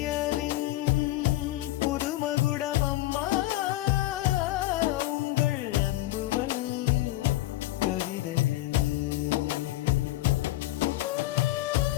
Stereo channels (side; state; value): right; quieter; 16.6 dB